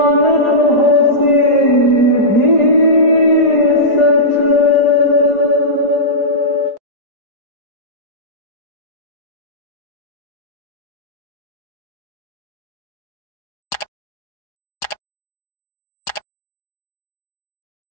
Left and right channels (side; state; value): right; late; 4.9 ms